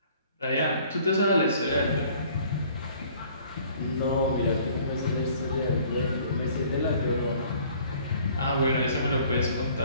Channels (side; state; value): both; inverted; correlation -0.55